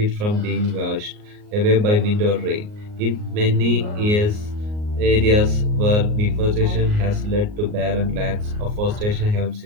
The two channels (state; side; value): late; left; 38 ms